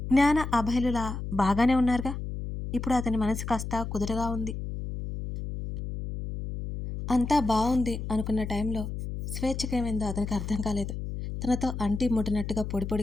జ్ఞాన అభయలులా బాగానే ఉన్నారుగా. ఇప్పుడు అతని మనసు కాస్త కుదురుగా ఉంది. అంతా బావుంది అనుకున్న టైంలో స్వేచ్ఛకేమైందో అతనికి అర్థం కాలేదు. తనతో అంటి ముట్టినట్టుగా పొడి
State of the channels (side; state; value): left; noise; hum, 6 dB below the sound